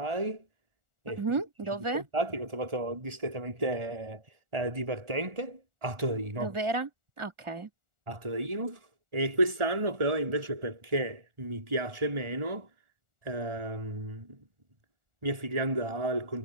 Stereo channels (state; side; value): late; left; 1.4 ms